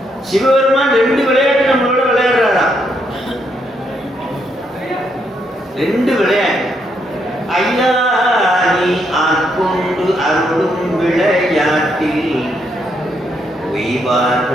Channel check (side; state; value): both; normal; correlation 0.76